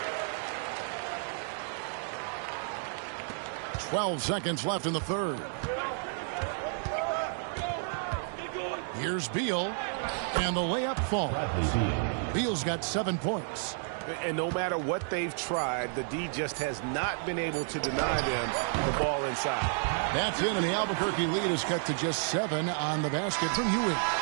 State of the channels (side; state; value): left; silent; 57 dB below the other